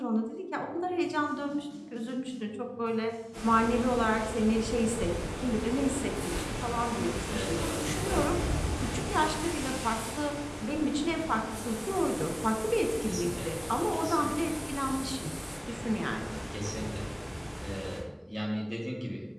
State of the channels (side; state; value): both; identical; correlation 1.00